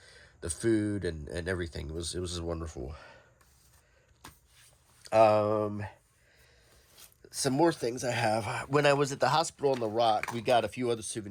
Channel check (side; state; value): both; identical; correlation 1.00